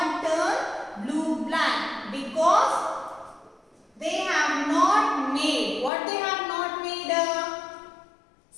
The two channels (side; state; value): right; drops out; at 5.9 s